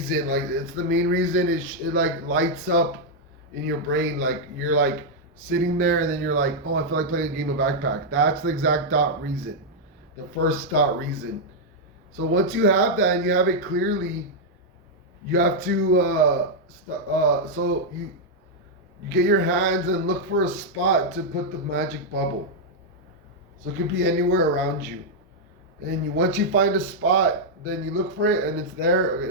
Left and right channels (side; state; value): both; normal; correlation -0.03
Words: Like it's the main reason. It like lights up in your brain. Like you're like sitting there and then you're like, oh, I feel like playing a game of backpack. That's the exact dot reason. The first dot reason. So once you have that and you have it clearly, you have to so you get your hands and look for a spot to put the magic bubble. So it could be anywhere around you. And once you find a spot, then you look for it and it's there.